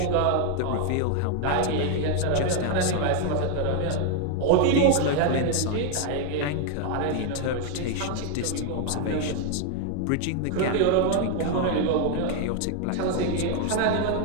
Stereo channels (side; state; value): both; different; correlation 0.01